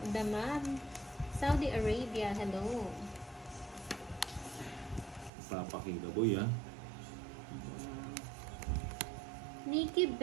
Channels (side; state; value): left; drops out; at 5.3 s